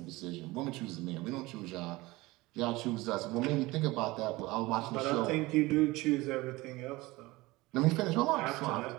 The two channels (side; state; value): left; quieter; 20.9 dB